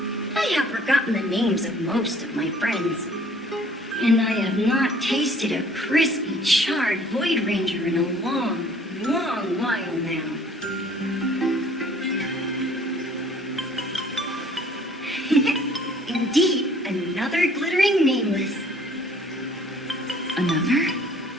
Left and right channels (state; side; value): normal; both; correlation 0.56